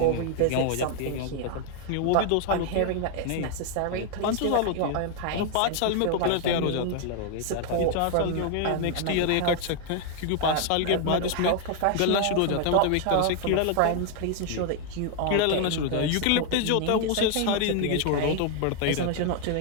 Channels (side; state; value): both; different; correlation 0.00